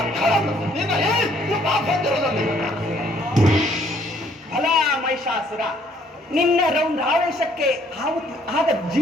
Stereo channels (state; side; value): normal; both; correlation 0.64